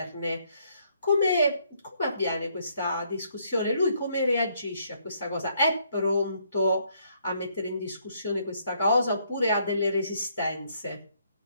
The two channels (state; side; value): inverted; both; correlation -0.69